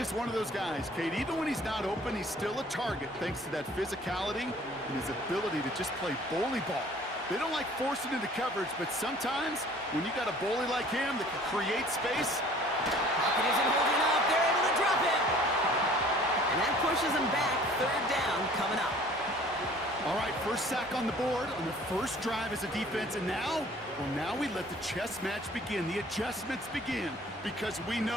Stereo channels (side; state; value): both; normal; correlation 0.52